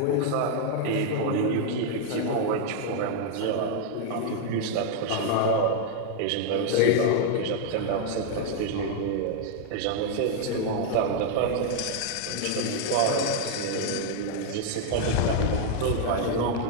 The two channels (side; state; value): both; different; correlation 0.00